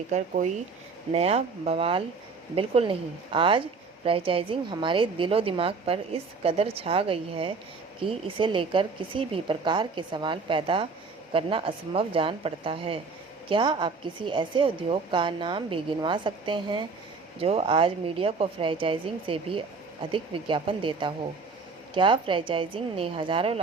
कोई नया बवाल बिल्कुल नहीं। आज फ्रेंचाइजिंग हमारे दिलो दिमाग पर इस कदर छा गई है कि इसे लेकर किसी भी प्रकार के सवाल पैदा करना असंभव जान पड़ता है। क्या आप किसी ऐसे उद्योग का नाम भी गिनवा सकते हैं जो आज मीडिया को फ्रेंचाइजिंग से भी अधिक विज्ञापन देता हो? क्या फ्रेंचाइजिंग ने हजारों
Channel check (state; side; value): quieter; left; 4.5 dB